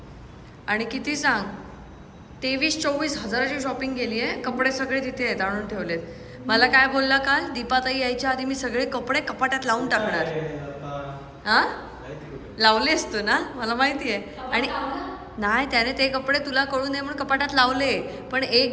आणि किती सांग 23-24 हजाराची शॉपिंग केली आहे. कपडे सगळे तिथे आहेत, आणून ठेवलेत. मला काय बोलला काल, दीपाताई यायच्या आधी मी सगळे कपडे कपाट्यात लावून टाकणार. हा लावले असतो ना, मला माहिती आहे. आणि नाही, त्याने ते कपडे तुला कळू नये म्हणून कपाटात लावले, पण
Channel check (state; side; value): identical; both; correlation 1.00